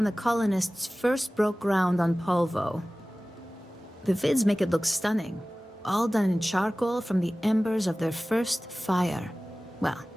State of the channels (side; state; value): both; normal; correlation 0.97